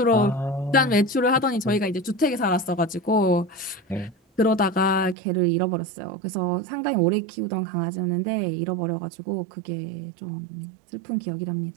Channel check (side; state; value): left; drops out; at 5.2 s